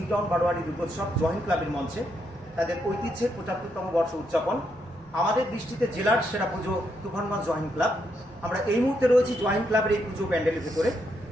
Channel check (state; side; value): normal; both; correlation 0.78